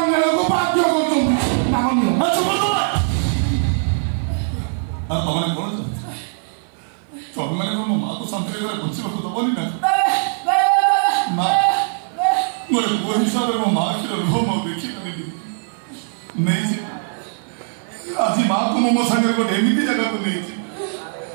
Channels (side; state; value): left; silent; 58 dB below the other